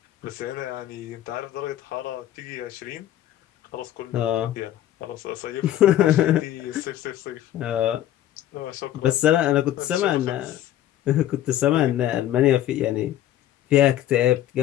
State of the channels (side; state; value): right; quieter; 12.5 dB